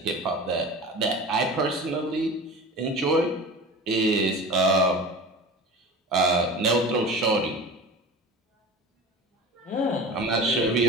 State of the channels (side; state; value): both; normal; correlation 0.35